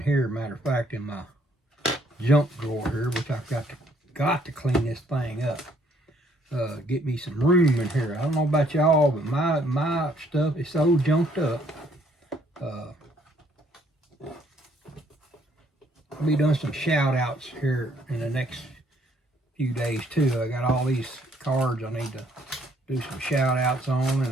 here, matter of fact, in my junk drawer here, which I've got to clean this thing up. Get me some room in here. I don't know about y'all, but my stuff is so junked up. I'll be doing some shout outs here in the next few days too. I got all these cards I need to do some shout outs on, and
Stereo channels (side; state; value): both; normal; correlation 0.66